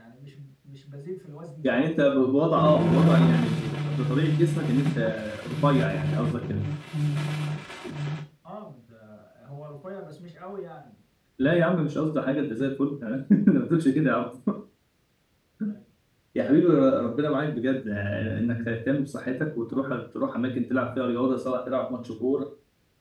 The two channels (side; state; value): both; identical; correlation 1.00